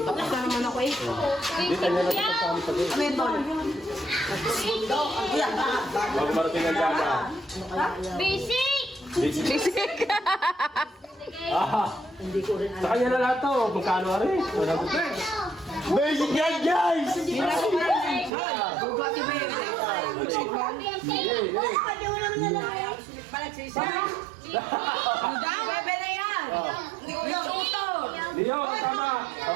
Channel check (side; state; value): left; drops out; at 18.3 s